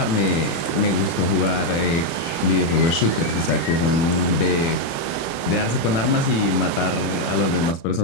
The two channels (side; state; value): right; late; 36 ms